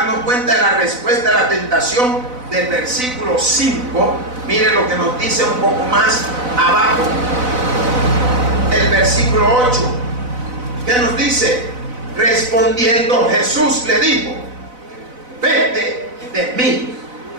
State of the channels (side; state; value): left; late; 4.0 ms